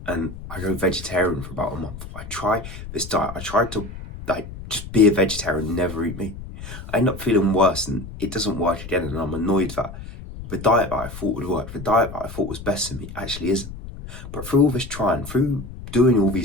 and I go vegetarian for about a month. I try this diet. I tried to just be a vegetarian, never eat meat. I end up feeling worse and it doesn't work again, and I'm annoyed that the diet that I thought would work, the diet that I thought was best for me actually isn't. But through all this trying, through doing all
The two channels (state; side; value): noise; left; rumble, 12 dB below the sound